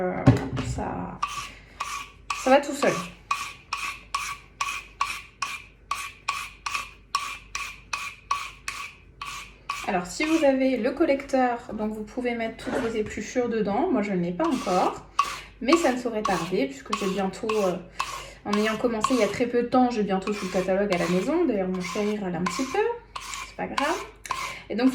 Ça va tout seul. Alors si vous avez le collecteur, donc vous pouvez mettre toutes vos épluchures dedans. Moi je ne l'ai pas encore, mais ça ne saurait tarder puisque j'ai bientôt, en ayant commencé il y a très peu de temps, j'ai bientôt tout le catalogue à la maison. D'ailleurs mon chéri râle un petit peu. Pas grave. Et donc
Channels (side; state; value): both; identical; correlation 1.00